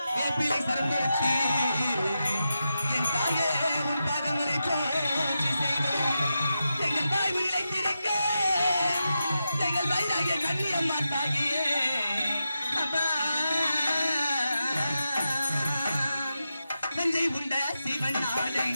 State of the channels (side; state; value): both; inverted; correlation -0.89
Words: வேப்பிலை சரந்தரிச்சு என் தாயே உன் பாதங்களை போற்றி செய்வோம் எங்கள் தாய் உயிரை திறக்க எங்கள் வயதாகிய கண்ணியம்மா தாகியே அப்பா நஞ்சை உண்ட சிவன் நாடை